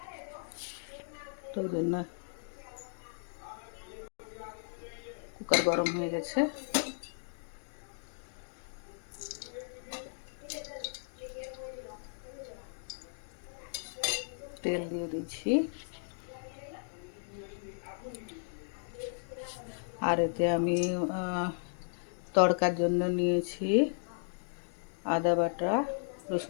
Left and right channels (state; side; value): silent; right; digital silence